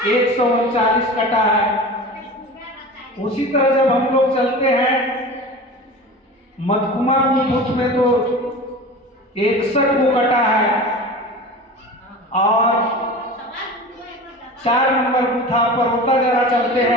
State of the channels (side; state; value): both; normal; correlation 0.34